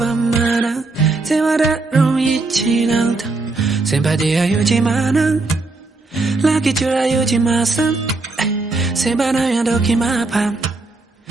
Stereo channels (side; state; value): left; quieter; 3.4 dB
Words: 마나 세와라로 잊지 않다 셈바디야 유지마는 라기 주라 유지마선 셈바나야 도키마밤